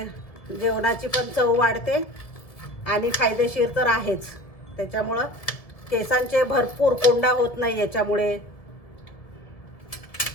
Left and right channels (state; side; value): late; right; 1.7 ms